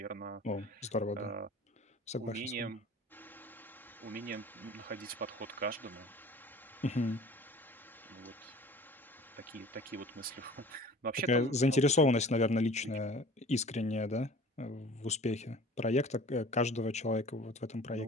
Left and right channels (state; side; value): normal; both; correlation 0.45